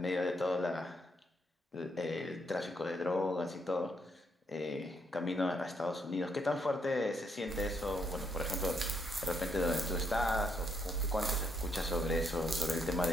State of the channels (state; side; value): normal; both; correlation 0.74